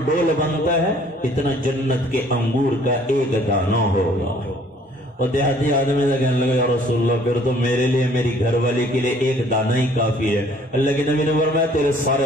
ڈول بنتا ہے اتنا جنت کے انگور کا ایک دانہ ہوگا. اور دیہاتی آدمی سے کہنے لگا یا رسول اللہ پھر تو میرے لیے میری گھر والی کے لیے ایک دانہ ہی کافی ہے. اللہ کے نبی نے فرمایا تیرے سارے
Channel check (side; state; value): both; normal; correlation 0.58